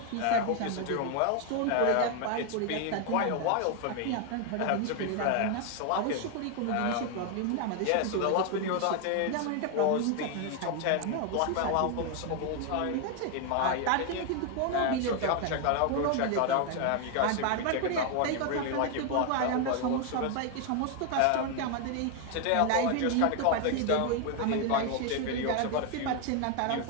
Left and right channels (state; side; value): different; both; correlation 0.01